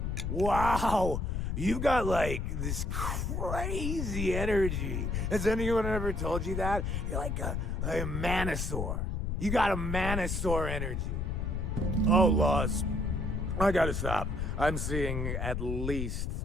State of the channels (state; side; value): noise; left; rumble, 1 dB below the sound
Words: Wow, you got like this crazy energy. Has anyone ever told you that? You're like a manosaur. You got a manosaur energy. Oh, Loss, I gotta stop. I'm seeing at least